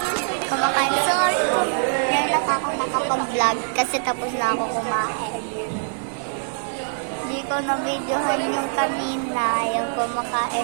Kumakain. Sorry kung ngayon lang ako nakapag-vlog kasi tapos na ako kumain. Hindi ko na-videohan yung kanina, yung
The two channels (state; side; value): silent; left; 63 dB below the other